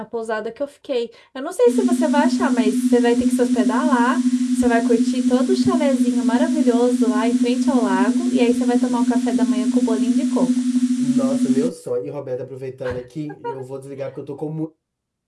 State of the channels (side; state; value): both; identical; correlation 1.00